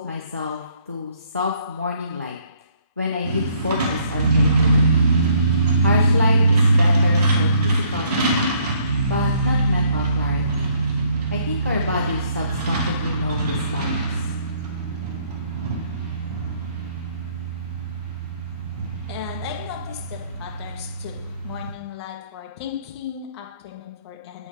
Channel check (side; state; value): both; inverted; correlation -0.65